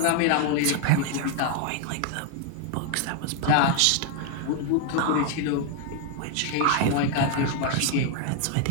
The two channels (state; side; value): different; both; correlation 0.01